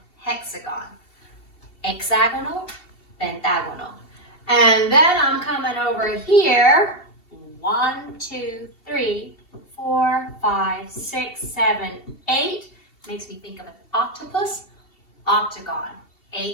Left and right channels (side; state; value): right; late; 2.7 ms